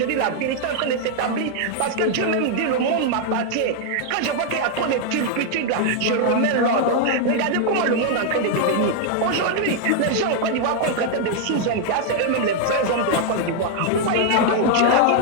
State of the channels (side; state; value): both; different; correlation 0.00